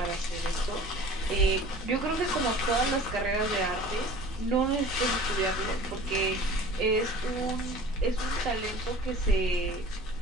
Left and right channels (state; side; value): normal; both; correlation 0.43